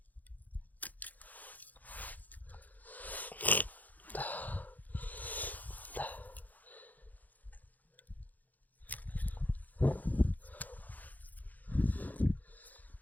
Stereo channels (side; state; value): right; late; 0.081 ms